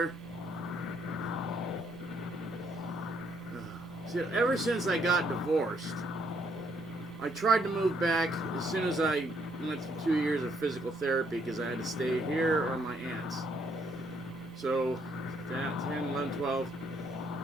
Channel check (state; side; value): normal; both; correlation 0.70